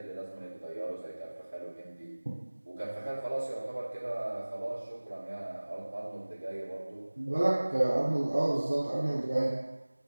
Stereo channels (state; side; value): inverted; both; correlation -1.00